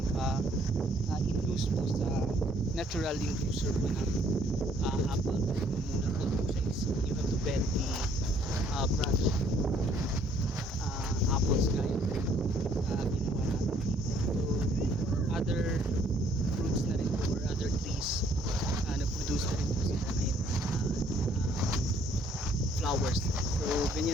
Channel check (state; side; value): normal; both; correlation 0.64